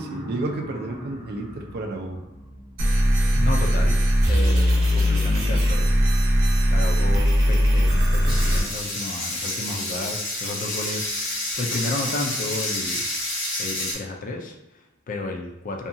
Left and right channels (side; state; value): both; normal; correlation 0.83